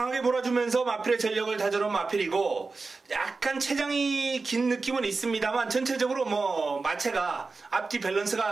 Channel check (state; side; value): quieter; left; 4.0 dB